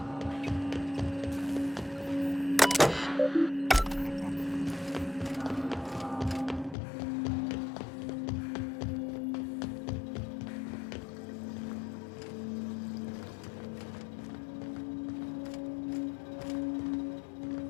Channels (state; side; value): drops out; right; at 6.8 s